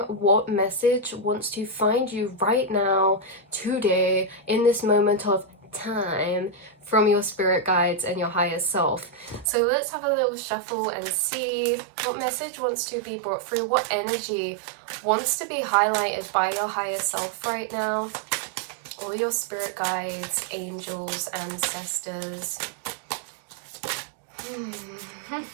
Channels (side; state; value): left; drops out; at 9.5 s